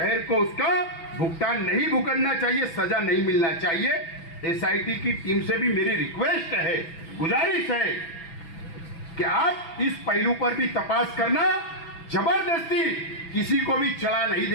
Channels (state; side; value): late; right; 6.0 ms